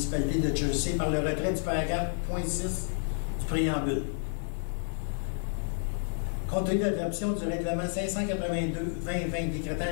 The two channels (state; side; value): silent; right; digital silence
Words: de Jersey par le retrait du paragraphe .6 du préambule. Compte tenu de l'adoption du règlement 582-2020